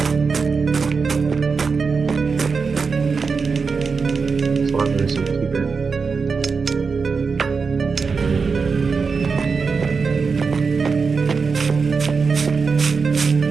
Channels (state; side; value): quieter; left; 5.0 dB